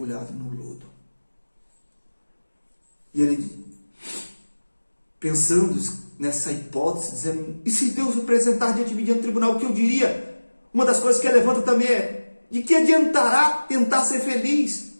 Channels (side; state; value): both; inverted; correlation -1.00